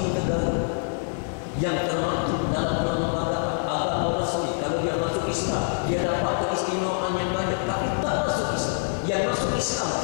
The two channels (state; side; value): silent; right; digital silence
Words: negara yang termaktub dalam perlembagaan agama resmi. Kalau dia masuk Islam, dia dapat keistimewaan yang banyak. Tapi tak masuk Islam, yang masuk Islam